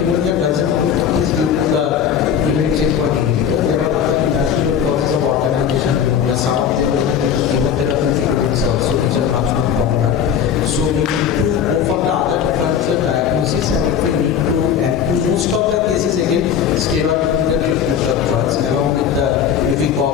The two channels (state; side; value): quieter; right; 8.3 dB